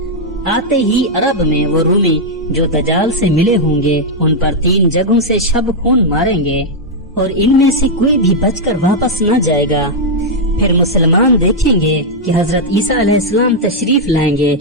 آتے ہی عرب میں وہ رومی جو دجال سے ملے ہوں گے ان پر 3 جگہوں سے شب خون ماریں گے، اور ان میں سے کوئی بھی بچ کر واپس نہ جائے گا۔ پھر مسلمان دیکھیں گے کہ حضرت عیسیٰ علیہ السلام تشریف لائیں گے،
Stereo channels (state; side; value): normal; both; correlation -0.03